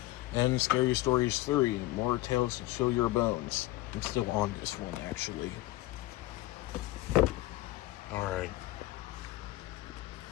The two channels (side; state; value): right; quieter; 18.0 dB